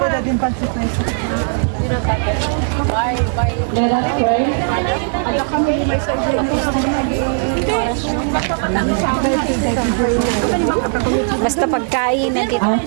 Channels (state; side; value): silent; left; 56 dB below the other